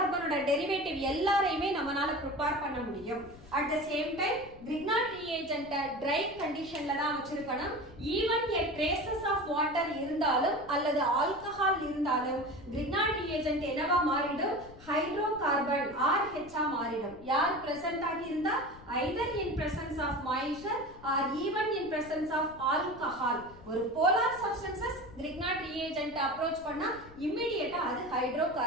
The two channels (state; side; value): noise; left; rumble, 20 dB below the sound